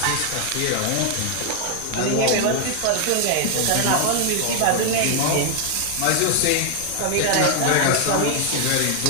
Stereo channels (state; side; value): different; both; correlation 0.00